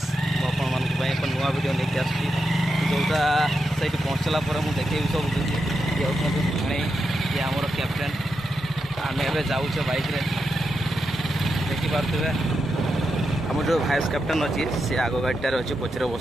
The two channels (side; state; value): both; normal; correlation 0.86